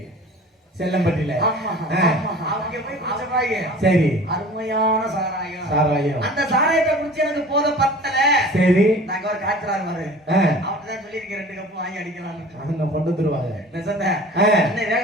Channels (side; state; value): both; normal; correlation 0.43